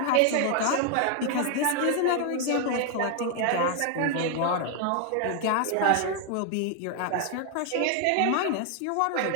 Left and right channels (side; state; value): both; different; correlation 0.00